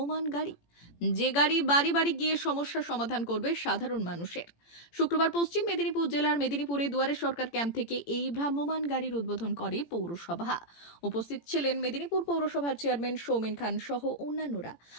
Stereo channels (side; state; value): right; late; 18 ms